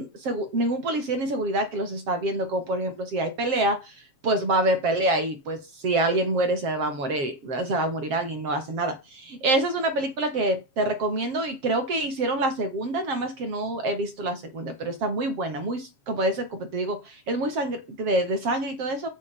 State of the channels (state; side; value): late; left; 7.5 ms